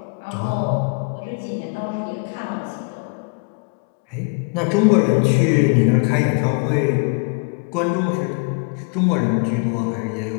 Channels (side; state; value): right; quieter; 34.1 dB